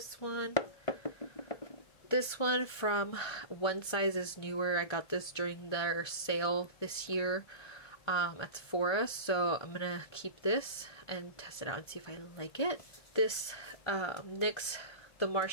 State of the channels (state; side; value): late; right; 1.5 ms